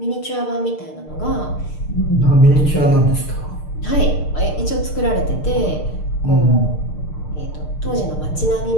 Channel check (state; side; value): late; right; 6.6 ms